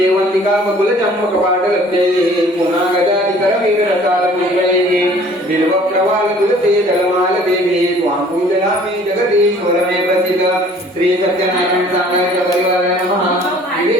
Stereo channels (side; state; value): both; normal; correlation 0.53